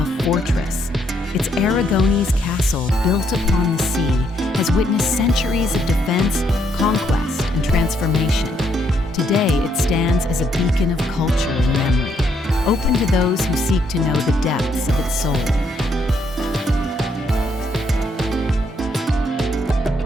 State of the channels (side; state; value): both; normal; correlation 0.73